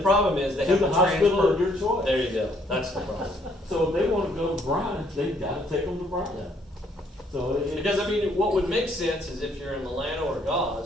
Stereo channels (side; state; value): both; normal; correlation 0.66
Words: problem is they to have the to hospital transfer. of your choice. There you go. That's the problem. So if they wanna go to Bryan, they've gotta take them to Bryan. Yeah. So Because I mean, what would make sense is if you're in Milano or